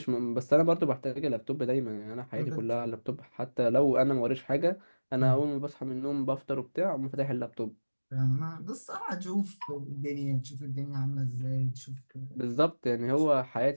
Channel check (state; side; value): inverted; both; correlation -1.00